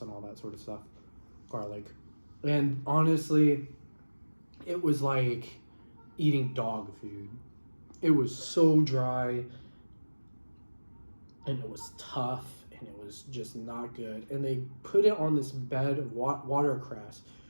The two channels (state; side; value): inverted; both; correlation -1.00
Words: and all that sort of stuff. Garlic. And honestly, it was like eating dog food. It was so dry and it was tough and it was just not good. And they put it on this bed of watercress,